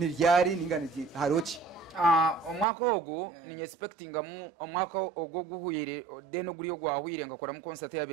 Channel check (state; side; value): drops out; left; at 2.7 s